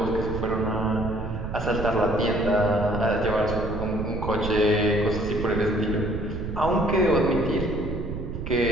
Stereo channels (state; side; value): noise; right; rumble, 6 dB below the sound